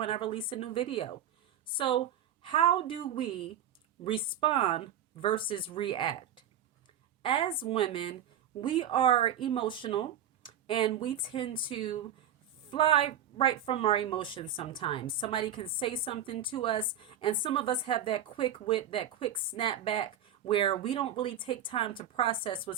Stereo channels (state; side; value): quieter; left; 8.6 dB